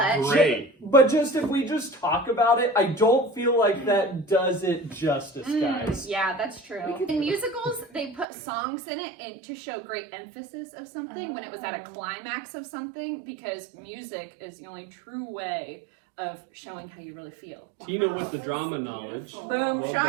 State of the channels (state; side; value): drops out; left; at 8.2 s